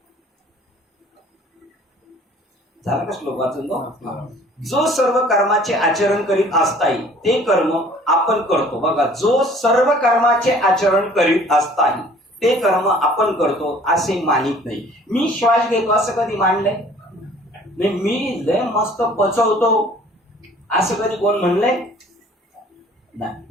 झालं का श्लोक वाचून? जो सर्व कर्माचे आचरण करीत असताही ते कर्म आपण करतो. बघा, जो सर्व कर्माचे आचरण करीत असताही ते कर्म आपण करतो असे मानित नाही. मी श्वास घेतो असं कधी मानलंय? मी लय मस्त पचवतो असं कधी कोण म्हणलंय? नाही.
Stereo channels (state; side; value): normal; both; correlation 0.53